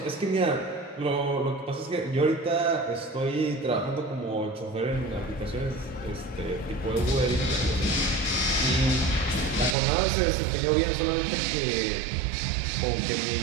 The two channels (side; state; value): left; drops out; at 9.8 s